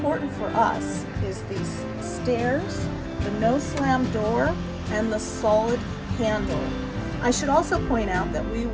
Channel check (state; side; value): identical; both; correlation 1.00